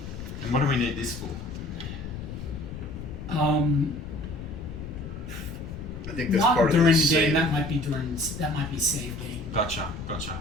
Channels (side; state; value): left; noise; rumble, 9 dB below the sound